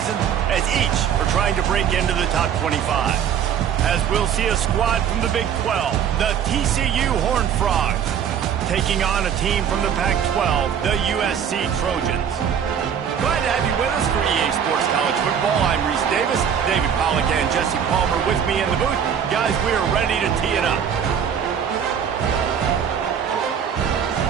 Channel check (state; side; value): quieter; left; 8.2 dB